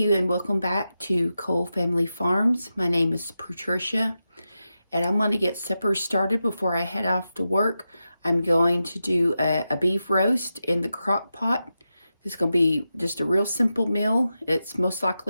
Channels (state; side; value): inverted; both; correlation -0.90